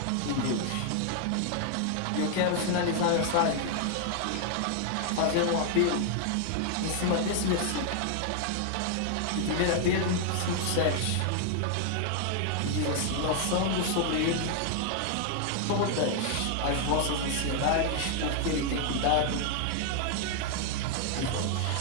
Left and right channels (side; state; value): both; different; correlation 0.00